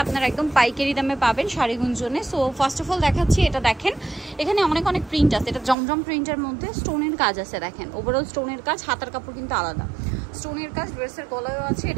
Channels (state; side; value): drops out; left; at 5.8 s